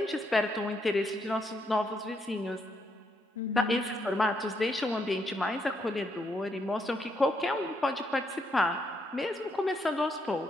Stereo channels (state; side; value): normal; both; correlation 0.76